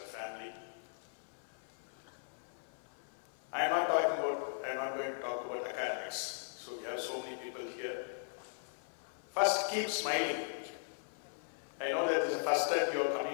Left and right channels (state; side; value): silent; right; 52 dB below the other